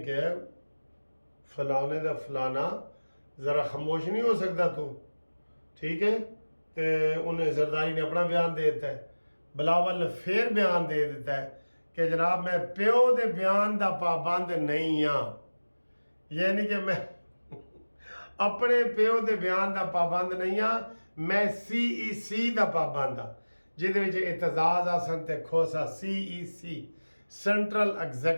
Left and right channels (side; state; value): both; inverted; correlation -1.00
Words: کہا ہے فلانے دا فلانا ذرا خاموش نہیں ہو سکتا تو، ٹھیک ہے؟ تے انہیں زرداری نے اپنا بیان دے دیتا ہے، بلاول نے پھر بیان دے دیتا ہے کہ جناب میں پیو دے بیان دا پابند نہیں ہاں، یعنی کہ میں اپنے پیو دے بیان دا پابند نہیں ہاں، میں سی ای سی دا پابند ہاں، جہدے وچ اعتزاز آسن تے کھوسا سی ای سی، سینٹرل